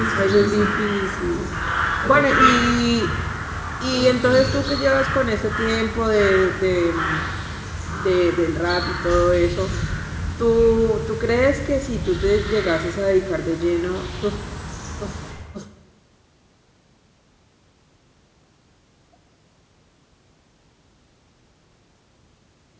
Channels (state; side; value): identical; both; correlation 1.00